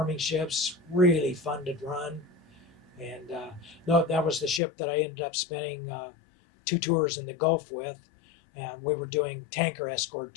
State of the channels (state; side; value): drops out; right; at 4.6 s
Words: ships, really fun to run. And that was the ship that I ended up spending 2 tours in the Gulf with. And we were doing tanker escort